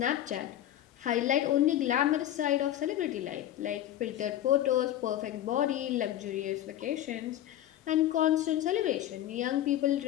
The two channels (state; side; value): quieter; right; 12.3 dB